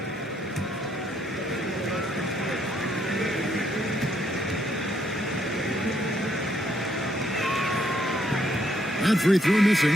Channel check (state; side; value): normal; both; correlation 0.72